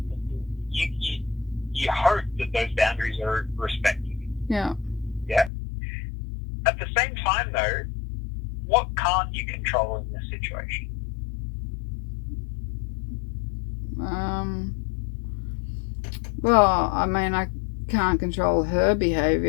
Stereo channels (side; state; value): right; drops out; at 5.5 s